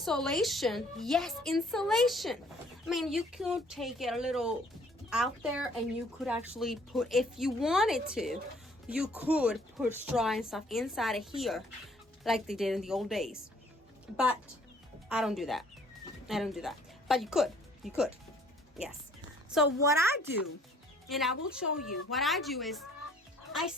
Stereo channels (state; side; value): normal; both; correlation 0.59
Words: Yes, insulation. I mean, you could take it a little out there and you could actually put, if you wanted to, you could put straw and stuff inside of here like they did in the old days. But I don't do that. I don't do that. But you could. You could. Yes. So what I do, and I will show you, what I do is I